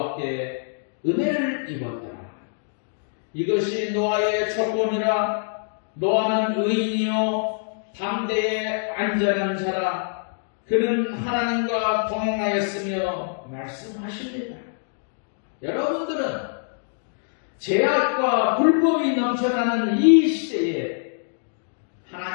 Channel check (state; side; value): silent; right; digital silence